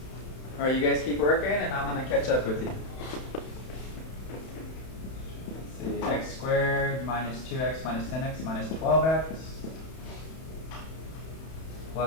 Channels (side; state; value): right; late; 31 ms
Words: All right, you guys keep working, and I'm going to catch up with you. Let's see, x squared minus 2x minus 10x minus 12x